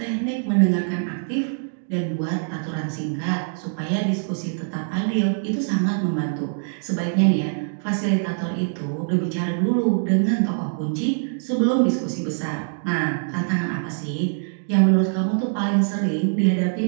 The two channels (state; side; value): silent; left; digital silence